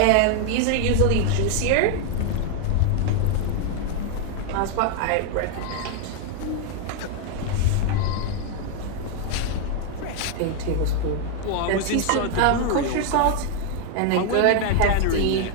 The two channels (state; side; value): different; both; correlation 0.00